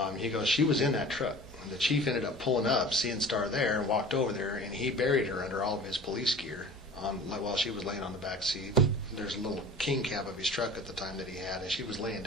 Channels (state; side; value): normal; both; correlation 0.41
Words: He goes, she was in that truck. And the chief ended up pulling up, seeing Starr there, and walked over there, and he buried her under all of his police gear while she was laying on the back seat. There's a little king cab of his truck at the time that he had, and she was laying